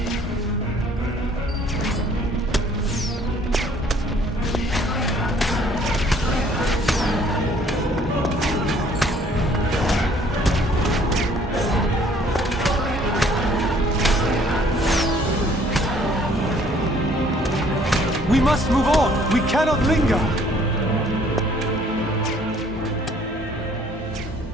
We must move on! We cannot linger!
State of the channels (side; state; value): both; normal; correlation 0.59